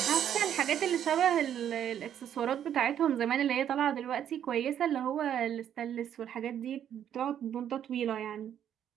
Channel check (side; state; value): left; quieter; 9.8 dB